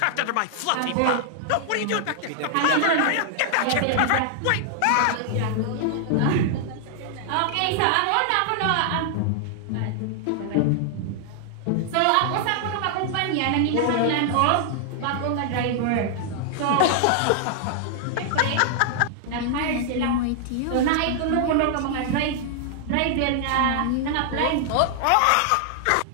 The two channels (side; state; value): both; different; correlation 0.00